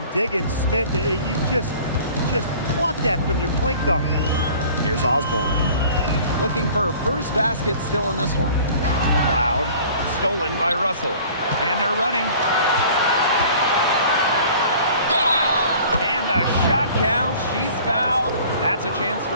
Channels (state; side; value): inverted; both; correlation -0.48